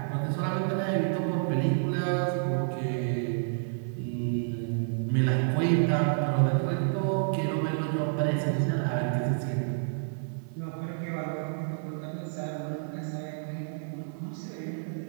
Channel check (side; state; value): left; silent; 58 dB below the other